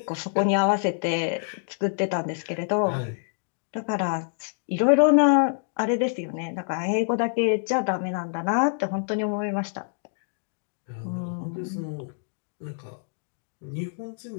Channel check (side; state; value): right; silent; digital silence